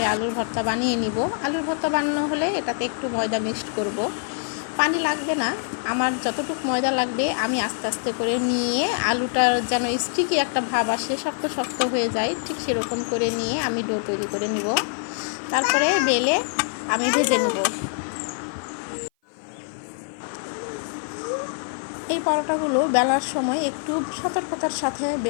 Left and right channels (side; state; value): right; silent; 56 dB below the other